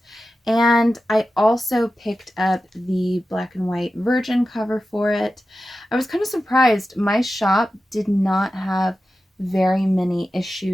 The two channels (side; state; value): both; normal; correlation 0.93